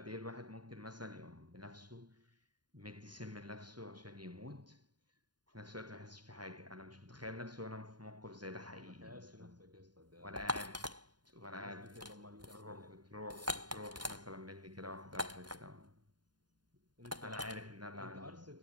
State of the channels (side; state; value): left; late; 0.70 ms